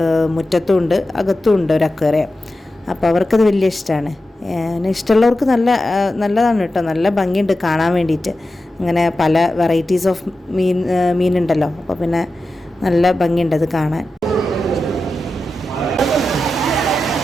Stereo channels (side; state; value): both; normal; correlation 0.92